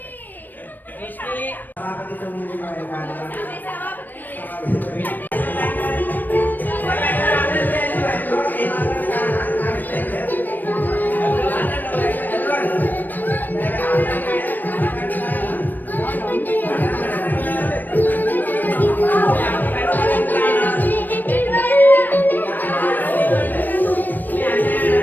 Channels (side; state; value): right; late; 0.089 ms